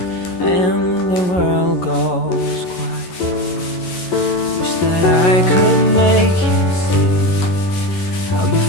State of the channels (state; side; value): late; right; 11 ms